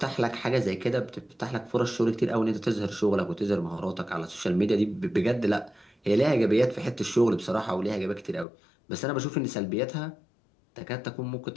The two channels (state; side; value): drops out; right; at 8.5 s